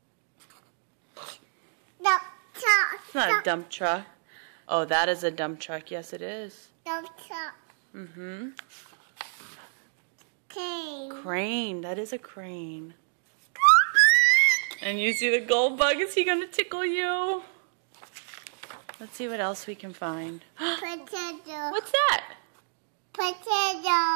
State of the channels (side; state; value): left; silent; digital silence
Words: It's not a dump truck. Oh, that is a dump truck. Yes, it is. Mm-hmm. Crane. That is a crane. And you see the gold bug? Is he gonna tickle you? Let's see what else we can find. Potato. What's that?